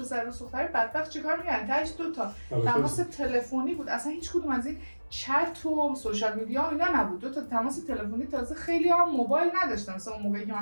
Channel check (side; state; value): both; inverted; correlation -1.00